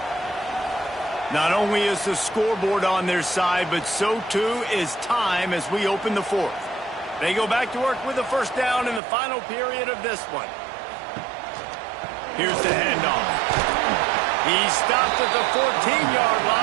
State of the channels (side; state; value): left; drops out; at 9.0 s